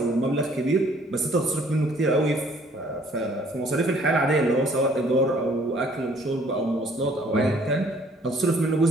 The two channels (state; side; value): normal; both; correlation 0.59